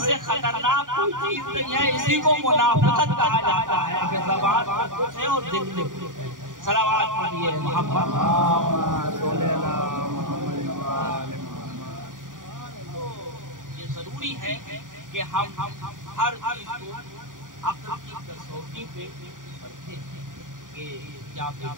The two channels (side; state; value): left; late; 0.88 ms